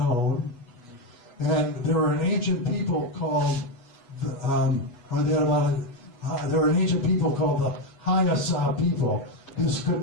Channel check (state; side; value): late; right; 8.2 ms